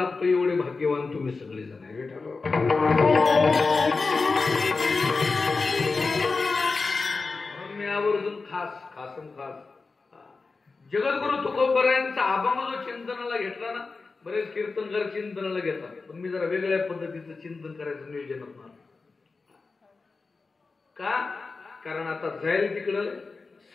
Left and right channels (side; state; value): right; quieter; 4.1 dB